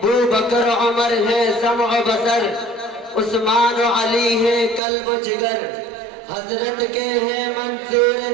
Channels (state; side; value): drops out; left; at 4.8 s